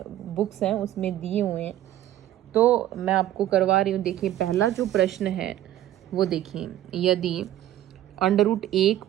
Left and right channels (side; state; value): left; quieter; 13.0 dB